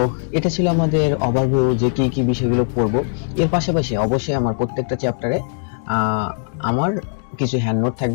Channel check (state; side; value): silent; right; digital silence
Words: এটা ছিল আমাদের ওভারভিউ যে কি কি বিষয়গুলো পড়ব। এর পাশাপাশি অবশ্যই আমার প্রত্যেকটা চ্যাপ্টারে আমার কিছু হ্যান্ড নোট